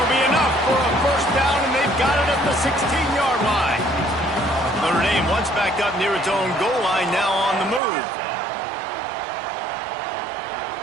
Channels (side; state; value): left; drops out; at 7.8 s